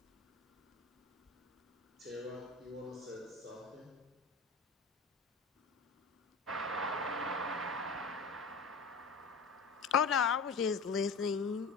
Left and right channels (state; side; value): quieter; right; 4.3 dB